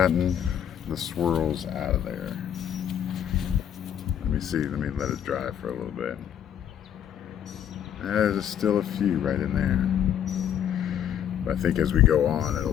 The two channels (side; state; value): right; quieter; 9.6 dB